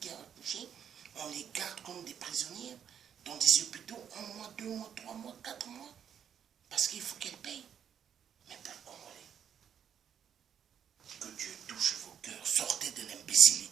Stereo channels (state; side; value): quieter; left; 8.6 dB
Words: ont accouché? On les garde comme des prisonnières dans des hôpitaux 1 mois, 2 mois, 3 mois, 4 mois parce qu'il faut qu'elles payent. Mais peuple congolais, que Dieu touche vos cœurs, sortez de